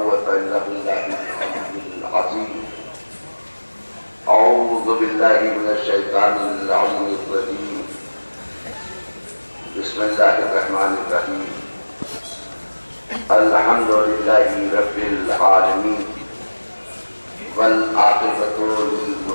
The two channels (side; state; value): both; inverted; correlation -1.00